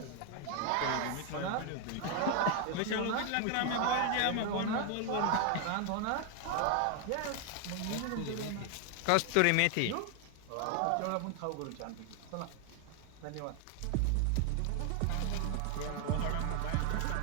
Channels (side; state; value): both; different; correlation 0.01